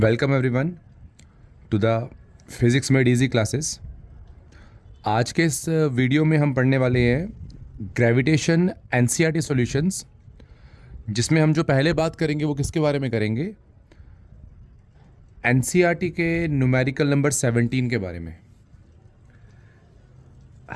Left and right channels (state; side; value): identical; both; correlation 1.00